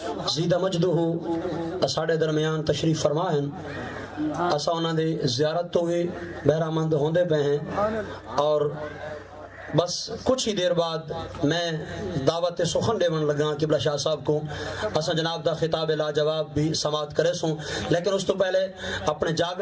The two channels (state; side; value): identical; both; correlation 1.00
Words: زیدہ مجدہ اساڑے درمیان تشریف فرما ہیں. اسا انہاں دے زیارت تو بھی بہرہ مند ہوندے پہ ہیں، اور بس کچھ ہی دیر بعد میں دعوت سخن دیون لگا قبلہ شاہ صاحب کو. اسا جناب دا خطاب لاجواب بھی سماعت کرے سوں، لیکن اس تو پہلے اپنے